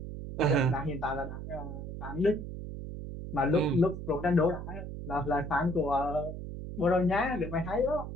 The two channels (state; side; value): noise; right; hum, 8 dB below the sound